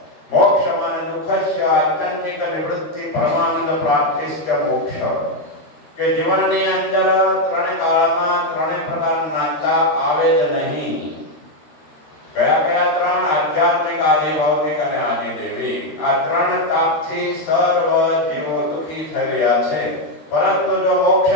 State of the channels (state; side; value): late; right; 13 ms